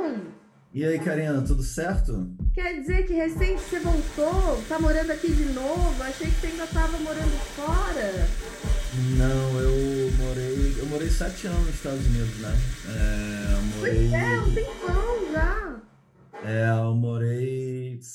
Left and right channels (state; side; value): identical; both; correlation 1.00